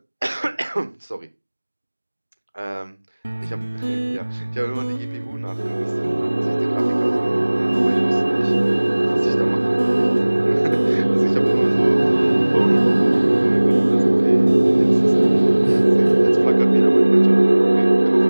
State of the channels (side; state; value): both; inverted; correlation -1.00